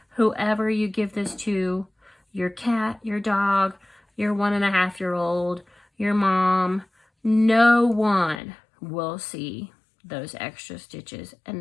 whoever you give this to, your cat, your dog, your 1.5-year-old, your mom, no one will see those extra stitches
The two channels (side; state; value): right; drops out; at 8.4 s